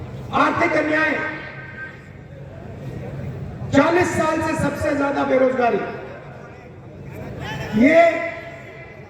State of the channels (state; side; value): identical; both; correlation 1.00